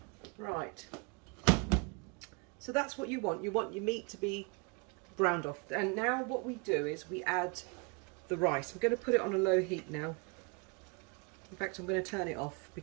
Right, so that's what you want. You want your meat to be browned off. And now what we do is we add the rice. I'm going to put it on a low heat now. In fact, I'm going to turn it off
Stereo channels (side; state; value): left; quieter; 31.8 dB